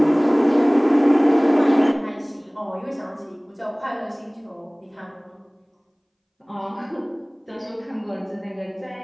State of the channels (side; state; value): both; identical; correlation 1.00